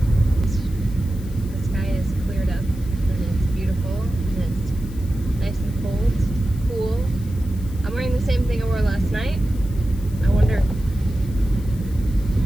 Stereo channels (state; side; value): noise; left; hiss, 22 dB below the sound